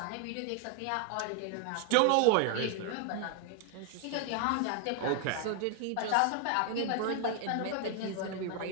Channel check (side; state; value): both; different; correlation 0.00